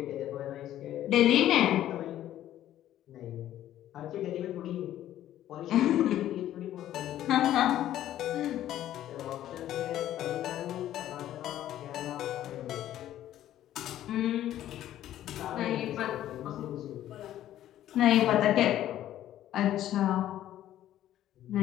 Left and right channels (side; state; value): right; quieter; 12.5 dB